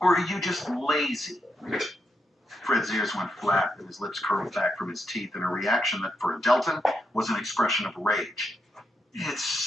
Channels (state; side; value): normal; both; correlation 0.82